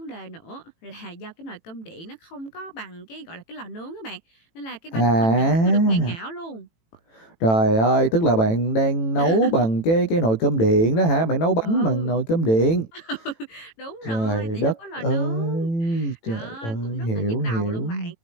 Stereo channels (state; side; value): late; right; 18 ms